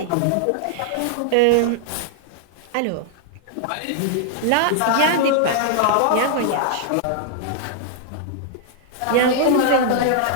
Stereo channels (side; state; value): both; different; correlation -0.01